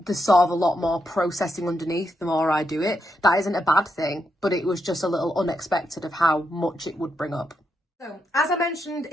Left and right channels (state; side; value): normal; both; correlation 0.82